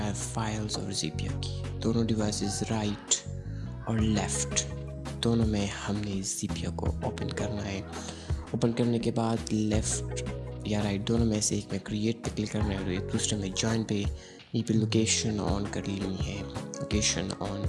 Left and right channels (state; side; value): identical; both; correlation 1.00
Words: files और ज़ैप्या की। दोनों डिवाइसेस राइट और लेफ़्ट दोनों में हमने ज़ैप्या को ओपन करना है। ओपन करने के बाद लेफ़्ट या राइट दोनों में से एक में क्रिएट पे क्लिक करना है और एक दूसरे में जॉइन पे यहीं पे लोकेशन ऑन कर लेनी है। लोकेशन ऑन,